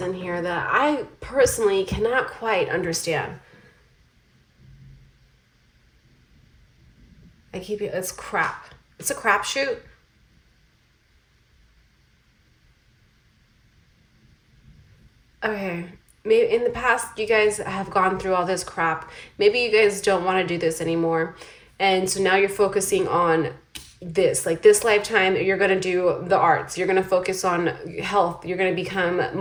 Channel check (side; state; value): both; identical; correlation 1.00